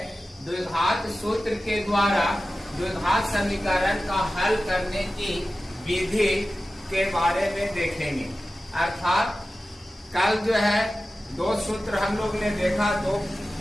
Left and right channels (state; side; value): normal; both; correlation 0.95